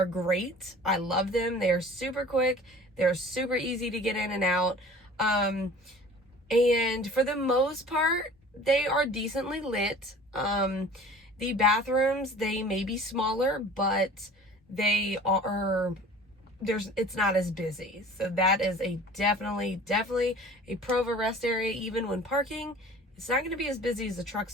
great. I love them. They're super quick. They're super easy to get in and out. And for the most part, they are decently lit. The bathrooms, they may be smaller, but it's not as busy. So that is definitely a pro of a rest area. Even when parking, it's not going to be as busy as a truck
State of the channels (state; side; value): normal; both; correlation 0.45